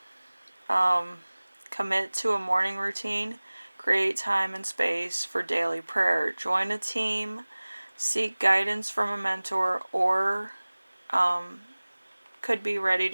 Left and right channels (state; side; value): inverted; both; correlation -1.00